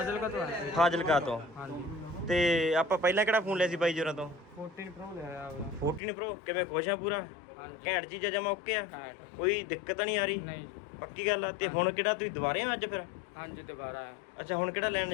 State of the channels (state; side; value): drops out; right; at 6.0 s